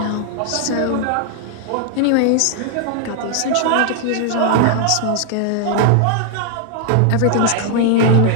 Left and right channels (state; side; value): different; both; correlation 0.00